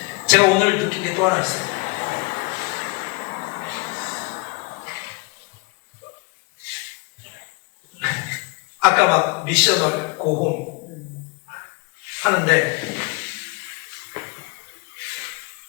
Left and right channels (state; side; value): quieter; right; 27.0 dB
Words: 제가 오늘 느낀 게 또 하나 있어요. 아까 막 미셔널 고홈 하는데